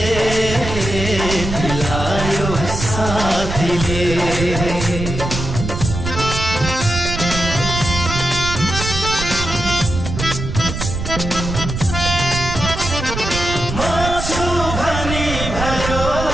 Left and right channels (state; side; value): noise; right; rumble, 5 dB below the sound